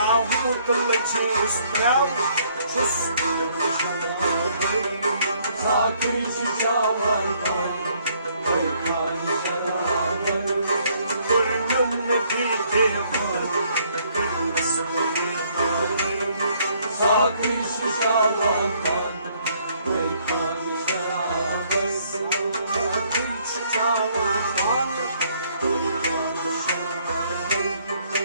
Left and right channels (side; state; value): both; inverted; correlation -0.66